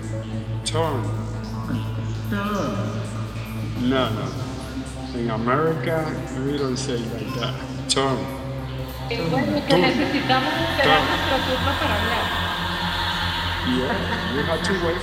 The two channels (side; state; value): both; identical; correlation 1.00